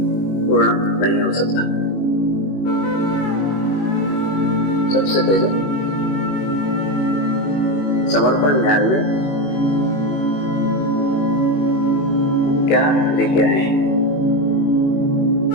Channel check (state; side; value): late; right; 21 ms